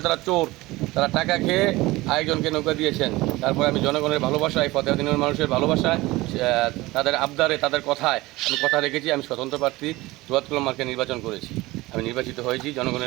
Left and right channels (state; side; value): quieter; left; 19.9 dB